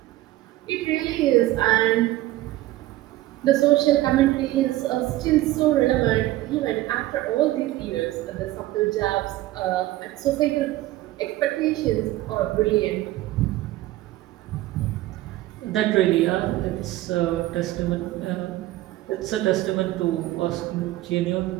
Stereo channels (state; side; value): quieter; left; 16.2 dB